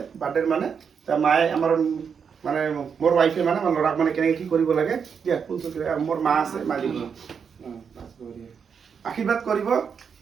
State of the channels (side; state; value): left; quieter; 6.6 dB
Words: বাৰ্থডেৰ মানে, মায়ে আমাৰ মানে মোৰ ৱাইফে মানে আমাৰ ল'ৰাক মানে কেনেকৈ কি কৰিব লাগে দিয়া, মোৰ মা আছে, মা দিব আশীৰ্বাদ কৰিব